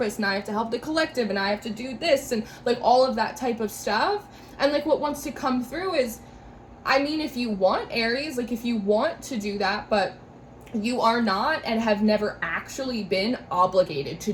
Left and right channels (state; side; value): identical; both; correlation 1.00